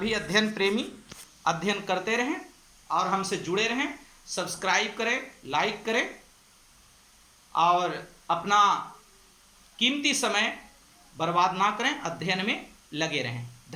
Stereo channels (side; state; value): both; identical; correlation 1.00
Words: अध्ययन प्रेमी अध्ययन करते रहें और हमसे जुड़े रहें। सब्सक्राइब करें, लाइक करें और अपना कीमती समय बर्बाद ना करें, अध्ययन में लगे रहें।